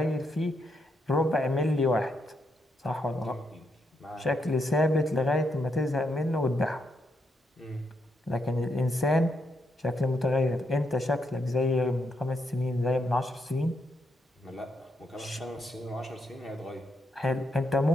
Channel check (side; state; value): both; normal; correlation 0.79